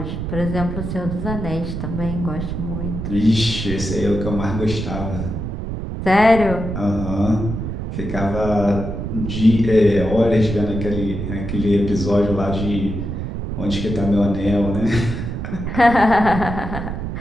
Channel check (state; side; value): noise; right; rumble, 5 dB below the sound